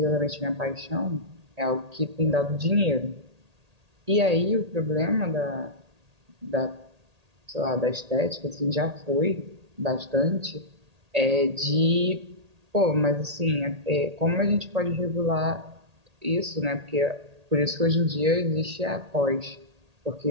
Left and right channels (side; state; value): left; late; 1.8 ms